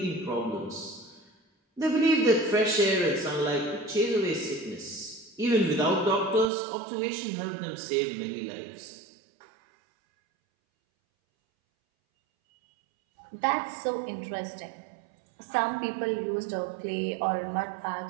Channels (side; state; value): left; drops out; at 6.5 s